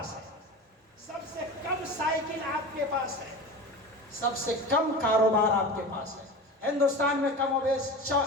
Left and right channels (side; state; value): both; normal; correlation 0.31